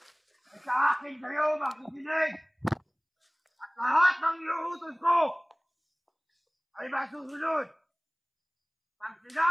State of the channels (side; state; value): both; identical; correlation 1.00